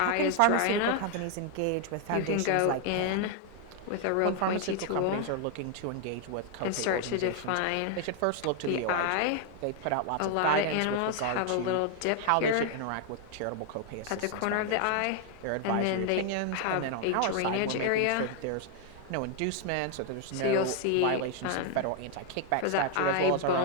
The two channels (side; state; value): both; different; correlation 0.00